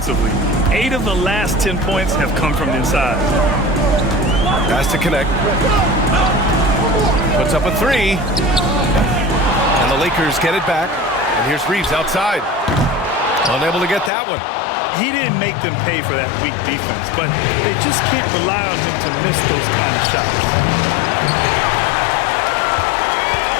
8 of the last 10 points have come from inside. Pass to Connect. Puts up a 3. And the Lakers get it back. And here's Reeves outside. Unable to get that one. He didn't make them pay for that weak defense, but they just can't rely on him to miss those kind of shots.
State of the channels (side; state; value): right; drops out; at 14.1 s